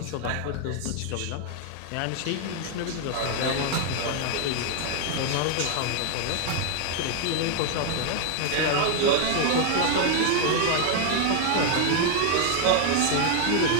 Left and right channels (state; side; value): different; both; correlation 0.00